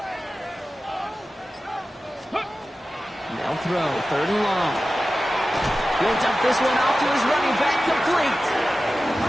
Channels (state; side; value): normal; both; correlation 0.95